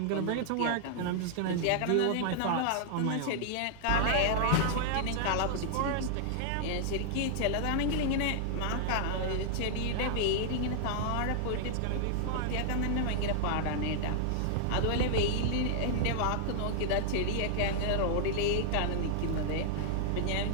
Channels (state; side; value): different; both; correlation -0.01